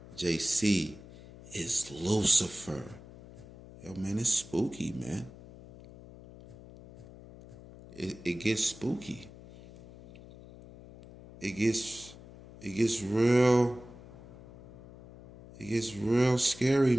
JC is Lucifer. Yo, man, it's spooky, man. It gets spooky. It gets real scary,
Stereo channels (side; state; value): left; noise; hum, 18 dB below the sound